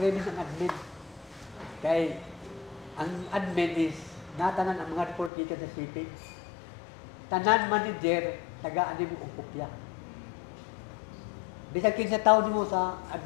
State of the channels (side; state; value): right; drops out; at 5.3 s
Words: ang admin. Kay ang admin is natanan ang mga report gikan sa shipping. Tanan manager tagaan nimo og kopya. Bisag kinsa tawo nimo sa